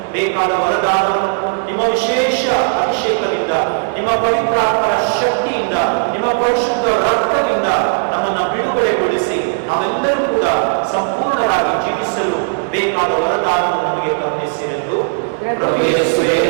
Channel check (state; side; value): silent; left; 69 dB below the other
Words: ಬೇಕಾದ ವರದಾನವನ್ನು ನಿಮ್ಮ ವಿಶೇಷ ಅಭಿಷೇಕದಿಂದ, ನಿಮ್ಮ ಪವಿತ್ರಾತ್ಮರ ಶಕ್ತಿಯಿಂದ, ನಿಮ್ಮ ಪರಿಶುದ್ಧ ರಕ್ತದಿಂದ ನಮ್ಮನ್ನು ಬಿಡುಗಡೆಗೊಳಿಸಿ ನಾವೆಲ್ಲರೂ ಕೂಡ ಸಂಪೂರ್ಣರಾಗಿ ಜೀವಿಸಲು ಬೇಕಾದ ವರದಾನವನ್ನು ನಮಗೆ ಕರುಣಿಸಿರೆಂದು ಪ್ರಭು ಯೇಸುವೇ